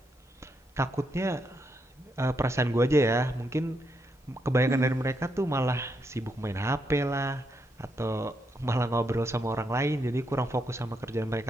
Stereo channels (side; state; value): both; normal; correlation 0.80